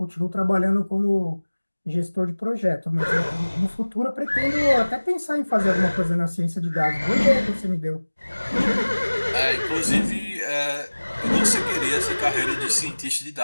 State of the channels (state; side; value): inverted; both; correlation -1.00